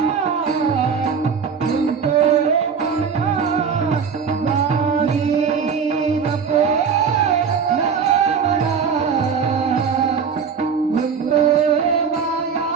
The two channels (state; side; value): quieter; left; 6.3 dB